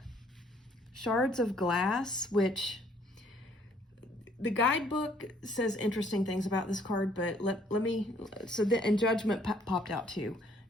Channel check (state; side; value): normal; both; correlation 0.63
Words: Shards of Glass, which the guidebook says interesting things about this card, but let me, and Judgment popped out too.